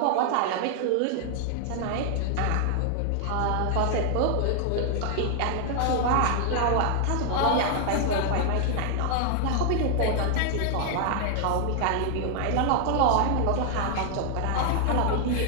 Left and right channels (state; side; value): different; both; correlation 0.00